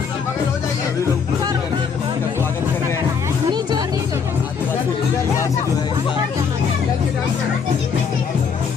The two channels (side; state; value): right; quieter; 6.2 dB